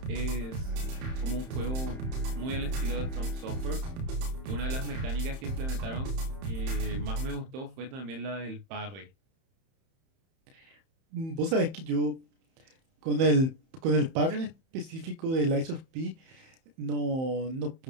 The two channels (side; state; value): left; late; 31 ms